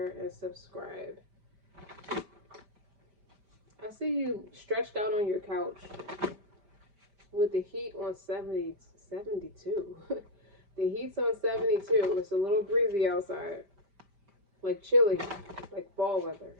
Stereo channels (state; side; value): late; left; 5.1 ms